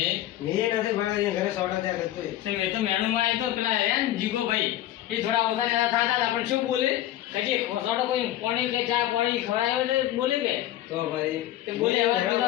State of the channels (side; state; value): right; quieter; 13.7 dB